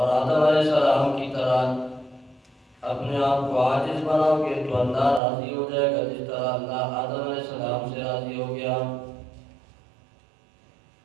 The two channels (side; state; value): left; drops out; at 5.2 s